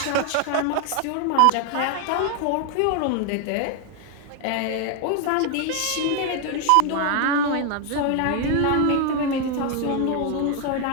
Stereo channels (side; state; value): both; different; correlation 0.01